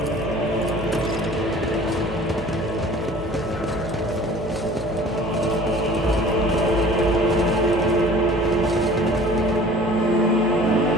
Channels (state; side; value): normal; both; correlation 0.47